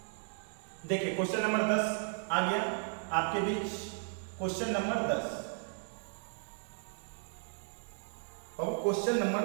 देखिए, क्वेश्चन नंबर 10 आ गया आपके बीच। क्वेश्चन नंबर 10, अब क्वेश्चन नंबर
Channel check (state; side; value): silent; left; digital silence